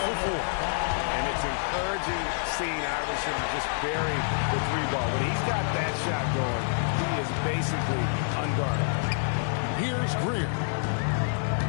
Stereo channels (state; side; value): silent; right; digital silence